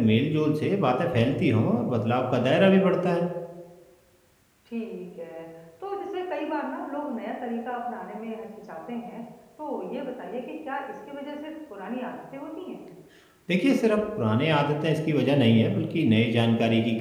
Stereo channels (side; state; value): both; identical; correlation 1.00